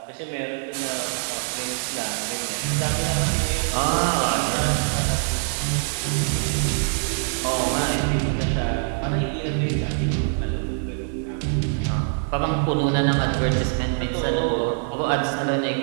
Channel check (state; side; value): silent; left; digital silence